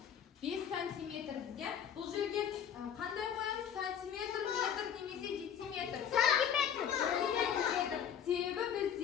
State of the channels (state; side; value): quieter; right; 8.5 dB